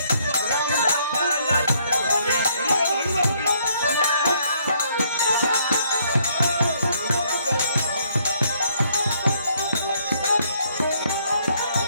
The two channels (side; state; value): both; inverted; correlation -0.68